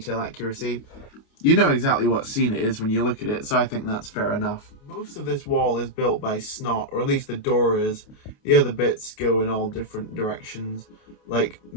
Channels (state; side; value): late; right; 28 ms